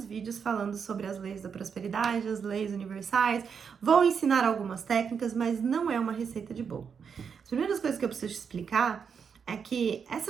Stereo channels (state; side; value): quieter; left; 6.6 dB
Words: vídeos falando sobre as leis da prosperidade, as leis universais. Vou ensinar algumas técnicas, mas não é uma receita de bolo. As primeiras coisas que eu preciso te explicar é que